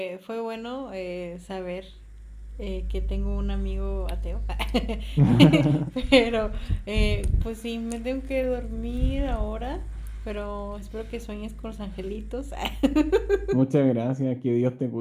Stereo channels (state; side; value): identical; both; correlation 1.00